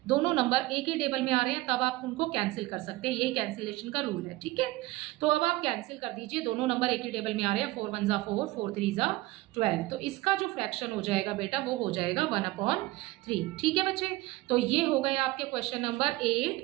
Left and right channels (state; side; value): quieter; left; 19.3 dB